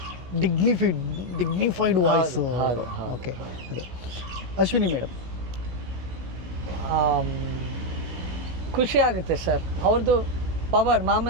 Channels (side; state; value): left; late; 16 ms